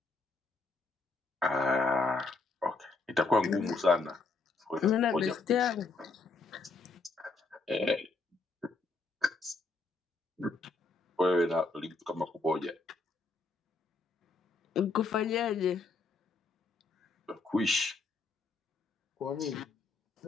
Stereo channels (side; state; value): right; quieter; 3.8 dB